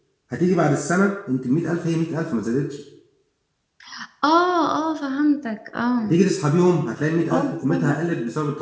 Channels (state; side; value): identical; both; correlation 1.00